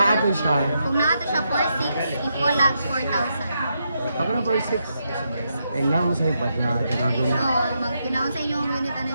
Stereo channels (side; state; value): both; inverted; correlation -0.82